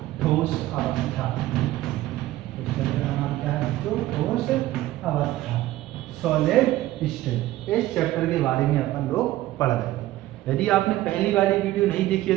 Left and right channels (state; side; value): quieter; left; 15.7 dB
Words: ठोस अवस्था। उस चैप्टर का नाम क्या है? तो ठोस अवस्था, सॉलिड स्टेट। इस चैप्टर के बारे में अपन लोग पढ़ रहे थे। यदि आपने पहली वाली वीडियो नहीं देखी है